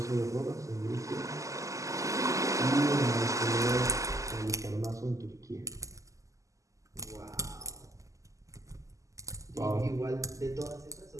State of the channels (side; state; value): left; late; 0.16 ms